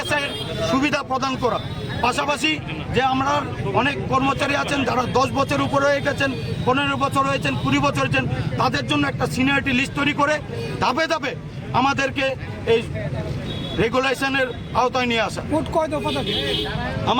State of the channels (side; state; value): both; identical; correlation 1.00